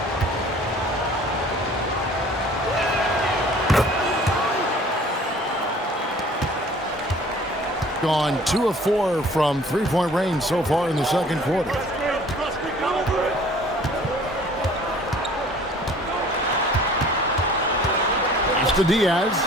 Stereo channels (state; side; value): normal; both; correlation 0.51